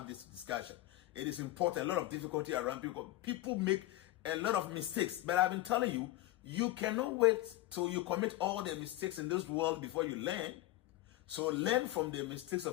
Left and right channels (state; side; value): quieter; right; 16.7 dB